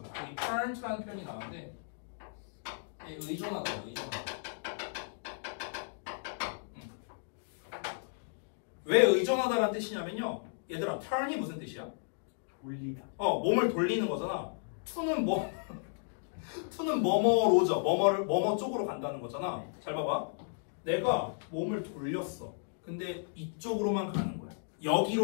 여기 turn to라는 표현이 나왔는데 의존하다. 왜 의존하다라는 뜻이냐면요. 얘들아, turn이 무슨 뜻이야? 돌리다. 몸을 돌리는 거잖아. to는 to는 뭐뭐로죠. 뭐뭐 쪽으로 간다는 거잖아. 잘 봐봐. 내가 몸을 돌렸어. 근데 이쪽으로만 가는 거야.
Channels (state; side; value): silent; right; digital silence